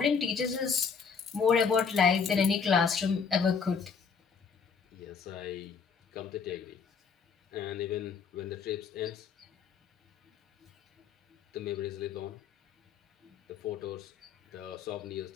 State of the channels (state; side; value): quieter; right; 5.9 dB